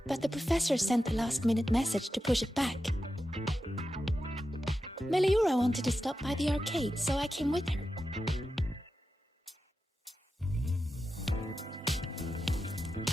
but the professor sent a last-minute message to push it back. Meliora wanted to stop by the arcade, so I came with her.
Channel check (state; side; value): normal; both; correlation 0.90